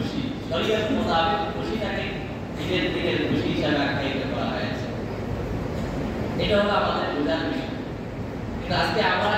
শরীয়ত মোতাবেক খুশিটাকে ঈদের দিনের খুশি হিসাবে আখ্যায়িত করা হয়েছে। এটা হলো আমাদের বোঝার বিষয়। কিন্তু আজকে আমরা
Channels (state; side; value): identical; both; correlation 1.00